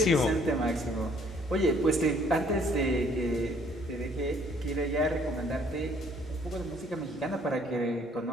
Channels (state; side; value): normal; both; correlation 0.61